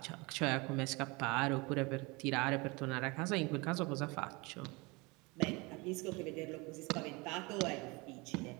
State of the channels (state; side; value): quieter; left; 26.2 dB